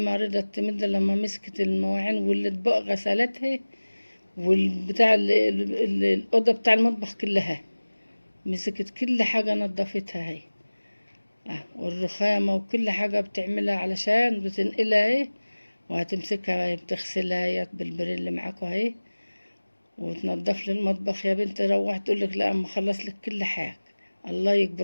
رضت تمد لما مسكت المواعين والاطباق غسلتها، والبتاع الأوضة بتاع المطبخ كلها مسكت كل حاجة نظفتها هي. والرخامة وكل حاجة بتعملها علشان بتنقلها اهي، وهتمسكها بتغسلها هي بالبريل اللي معاكوا اهي، وتنضف لي المطبخ. يا بنت روح تقولك لا اما خلص لك كل حاجة. الله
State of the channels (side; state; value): both; inverted; correlation -1.00